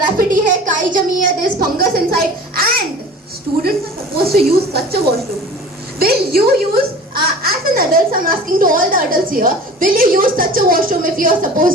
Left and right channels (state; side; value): normal; both; correlation 0.41